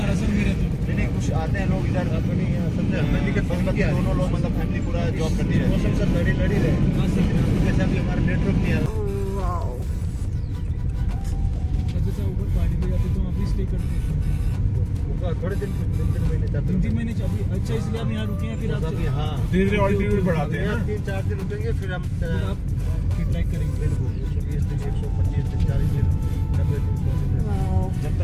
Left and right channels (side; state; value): both; identical; correlation 1.00